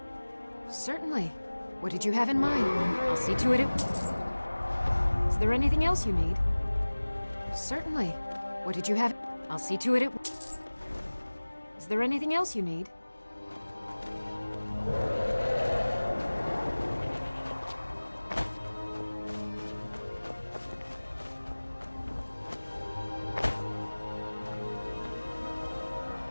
Certainly. What did you have in mind? I'll see to it. Is there anything else you need? Certainly. What did you have? I'll see to it. Is there anything else you need?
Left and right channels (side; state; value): both; inverted; correlation -1.00